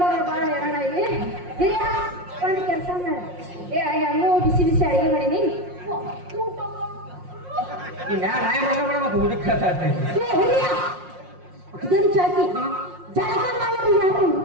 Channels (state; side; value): late; left; 5.6 ms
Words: ಬಾಳ ಹೇಳೋಣ ಇಲ್ಲಿ ಹಿರಿಯ ಒಂದು ಕೆಲಸ ಮಾಡ ಹೆಂಗೋ ಬಿಸಿ ಬಿಸಿ ಅಡಿಗೆ ಮಾಡೀನಿ ಈ ನಾಯಿ ಮಾಡ್ಕೊಂಡ್ಬಿಡ ಮತ್ತೆ ಊಟಕ್ಕೆ ಹಿರಿಯ ಇದನ್ನು ಚಾಕಿ ಜಳಕ ಮಾಡೋರು ಯಾರು